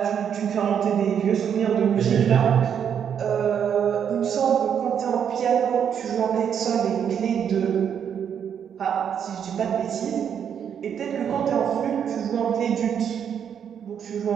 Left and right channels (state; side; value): quieter; left; 8.2 dB